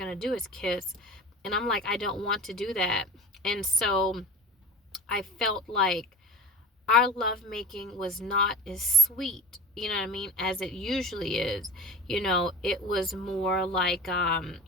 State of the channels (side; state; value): both; normal; correlation 0.33